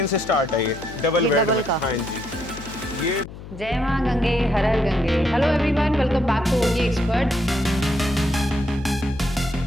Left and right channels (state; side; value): noise; left; hum, 14 dB below the sound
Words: से स्टार्ट है। ये डबल बेड में। हाँ जी। ये जय मां गंगे, हर हर Gange. Hello everyone, welcome back to OT expert.